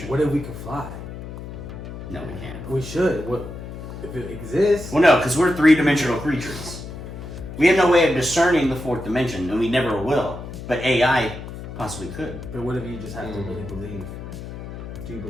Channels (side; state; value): left; noise; hum, 10 dB below the sound